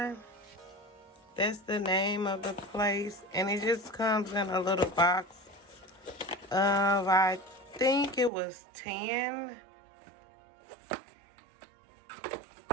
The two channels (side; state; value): left; drops out; at 8.3 s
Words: That's the name of the place. And it just comes in a little box of, I think it was 10.